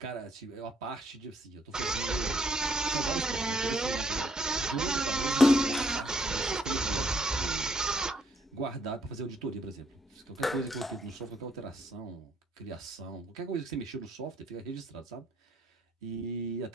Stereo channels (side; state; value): both; normal; correlation 0.69